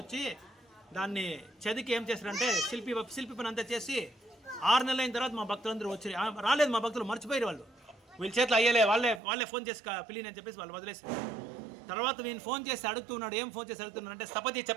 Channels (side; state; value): left; drops out; at 9.2 s